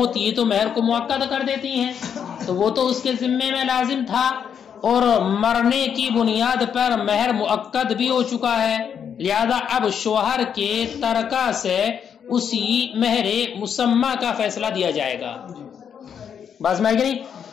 یہ تو مہر کو مؤکد کر دیتی ہیں، تو وہ تو اس کے ذمے میں لازم تھا اور مرنے کی بنیاد پر مہر مؤکد بھی ہو چکا ہے. لہذا اب شوہر کے ترکہ سے اسی مہر مسمہ کا فیصلہ دیا جائے گا. بس میں نہیں.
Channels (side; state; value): right; quieter; 7.9 dB